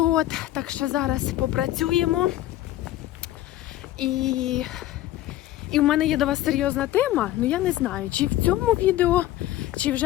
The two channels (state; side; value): quieter; right; 14.6 dB